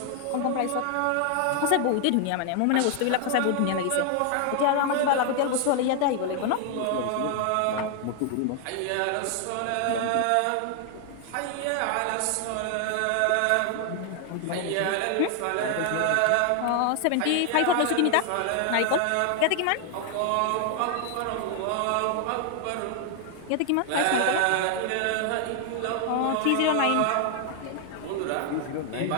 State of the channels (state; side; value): different; both; correlation 0.00